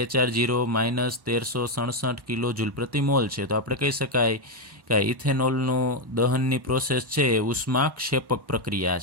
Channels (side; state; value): left; late; 1.1 ms